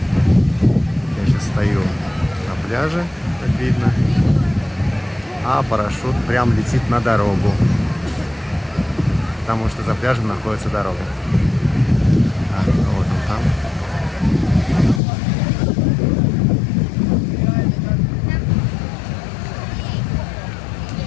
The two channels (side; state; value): right; drops out; at 15.0 s